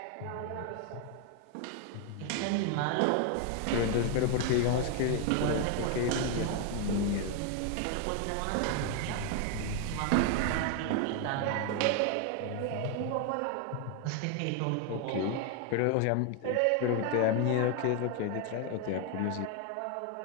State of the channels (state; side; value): different; both; correlation 0.01